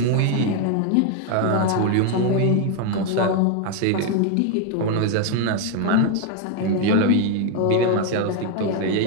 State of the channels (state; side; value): different; both; correlation 0.01